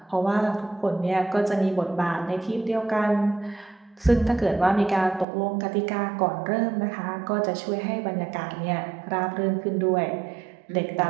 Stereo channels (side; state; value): left; drops out; at 5.2 s